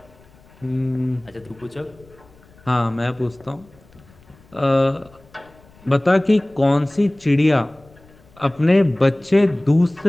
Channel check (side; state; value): left; noise; rumble, 27 dB below the sound